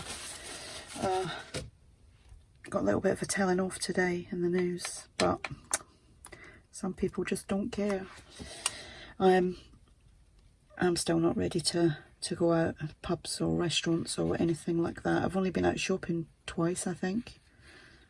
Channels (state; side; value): identical; both; correlation 1.00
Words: a telling off today in the news. But some people just don't care. I'm still not ready to go out at pubs or restaurants or anything like that. I've only been out shopping twice, I think,